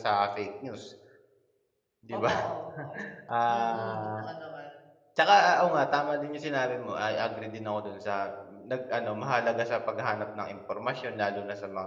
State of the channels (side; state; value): both; identical; correlation 1.00